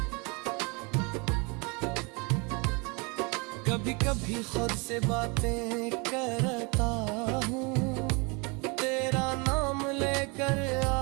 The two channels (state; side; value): quieter; left; 30.3 dB